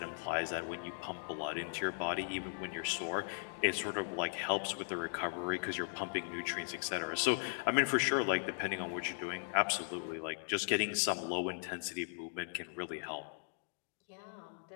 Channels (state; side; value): silent; right; digital silence